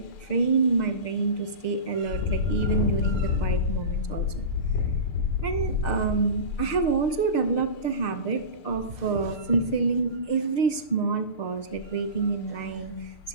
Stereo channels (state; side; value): late; right; 6.6 ms